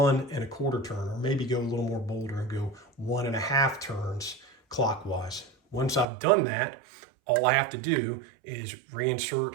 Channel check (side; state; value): left; drops out; at 6.1 s